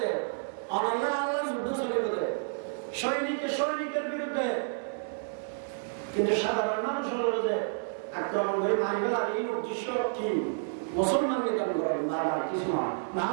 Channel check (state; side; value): silent; left; digital silence